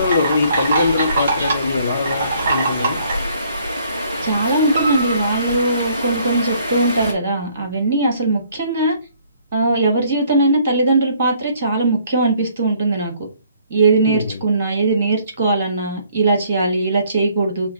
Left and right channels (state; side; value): inverted; both; correlation -0.63